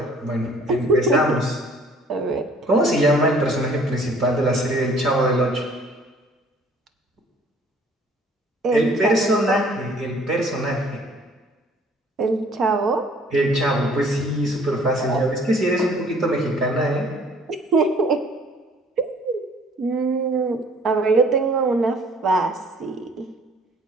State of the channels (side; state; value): both; normal; correlation 0.56